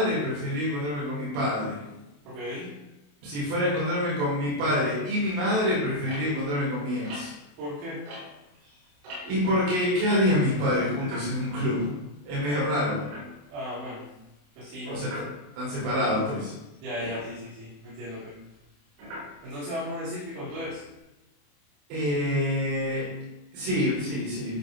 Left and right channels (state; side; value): late; left; 27 ms